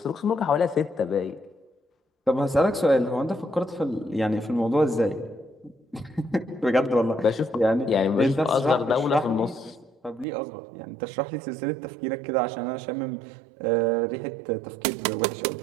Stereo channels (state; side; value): drops out; left; at 10.2 s